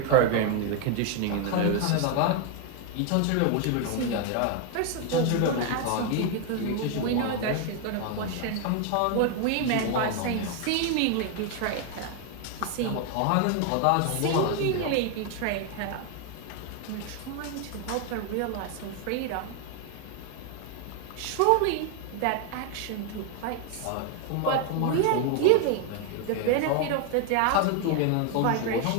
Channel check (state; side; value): different; both; correlation 0.01